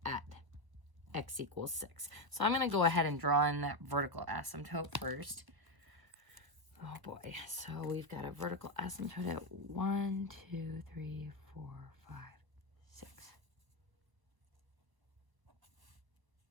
at x equals 6. So I'm going to go ahead and draw in that vertical asymptote first. Oh boy. So we've got a vertical asymptote at 1, 2, 3, 4, 5, 6.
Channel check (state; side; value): late; left; 1.0 ms